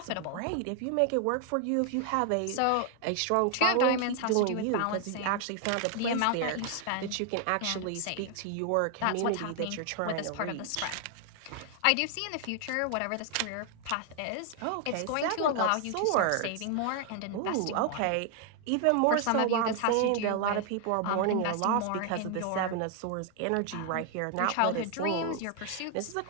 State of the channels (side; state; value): both; different; correlation 0.00